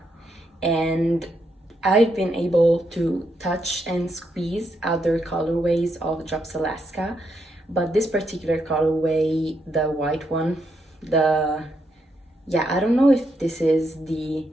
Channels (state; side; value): normal; both; correlation 0.79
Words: and I've been able to touch and squeeze other colorways of Drops Alaska, but this particular colorway, the white one, I don't know if this is the